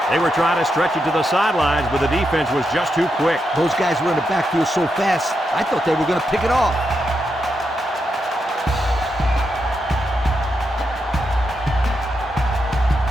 They were trying to stretch it to the sidelines, but the defense was just too quick. Those guys were in the backfield so fast, I thought they were going to pick it off.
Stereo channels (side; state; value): both; normal; correlation 0.84